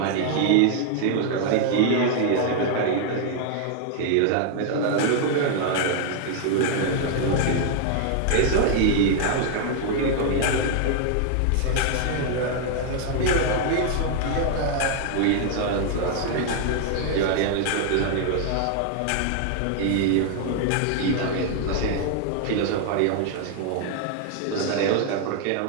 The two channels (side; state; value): both; different; correlation 0.00